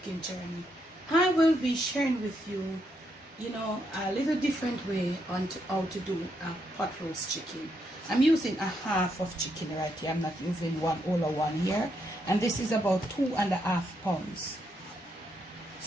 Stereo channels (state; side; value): normal; both; correlation 0.78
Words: Journey, I will be sharing with you, a little different way on how to do a pot roast chicken. I'm using a half of chicken right here. I'm not using all of one here. And this is about 2.5 pounds.